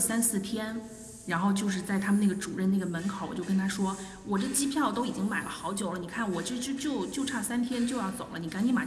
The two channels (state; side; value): identical; both; correlation 1.00